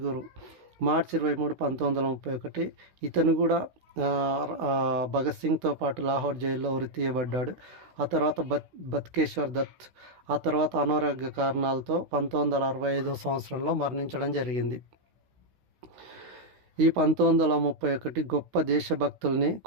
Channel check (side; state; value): left; late; 16 ms